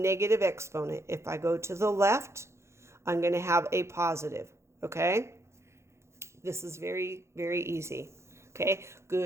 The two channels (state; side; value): late; left; 0.13 ms